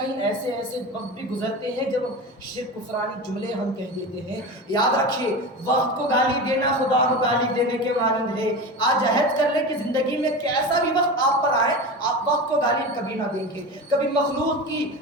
ایسے وقت بھی گزرتے ہیں جب شرک کفرانی جملے ہم کہہ دیتے ہیں۔ یاد رکھیے وقت کو گالی دینا خدا کو گالی دینے کے مانند ہے۔ آج عہد کر لیں کہ زندگی میں کیسا بھی وقت آپ پر آئے آپ وقت کو گالی کبھی نہ دیں گے، کبھی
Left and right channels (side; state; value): both; normal; correlation 0.26